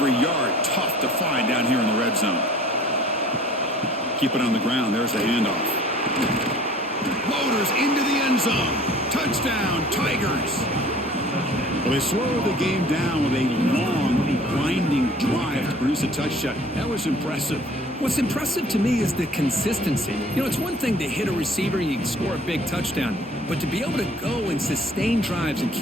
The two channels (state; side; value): normal; both; correlation 0.50